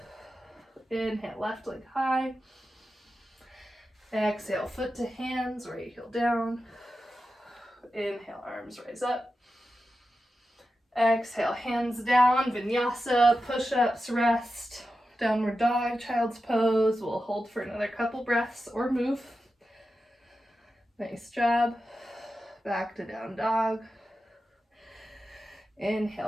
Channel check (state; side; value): normal; both; correlation 0.91